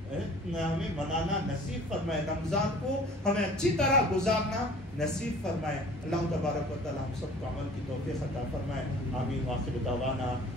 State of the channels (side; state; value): both; normal; correlation 0.48